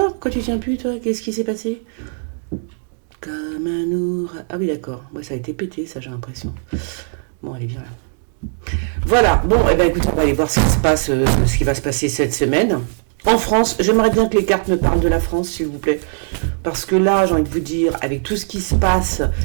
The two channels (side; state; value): left; silent; digital silence